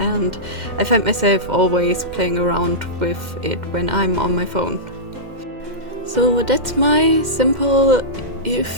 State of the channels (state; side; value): late; left; 2.1 ms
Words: I find myself always playing around with it when I'm on my phone. So that's my simple,